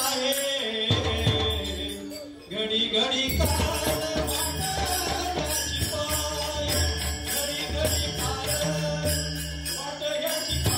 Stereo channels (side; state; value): both; identical; correlation 1.00